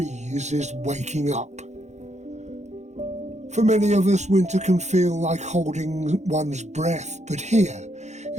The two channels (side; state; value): left; late; 0.33 ms